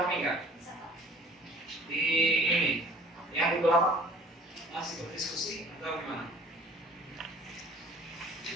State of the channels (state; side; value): normal; both; correlation 0.50